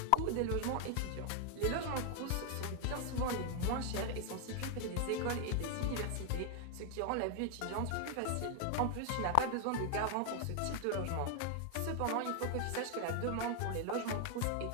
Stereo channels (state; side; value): different; both; correlation 0.00